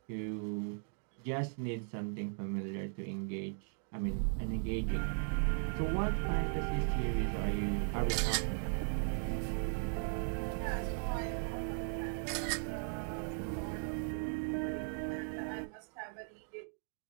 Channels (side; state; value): left; silent; 53 dB below the other